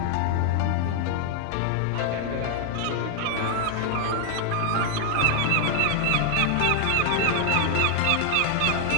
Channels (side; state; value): both; different; correlation 0.00